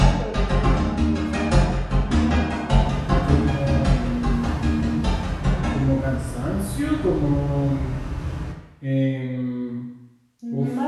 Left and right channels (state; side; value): identical; both; correlation 1.00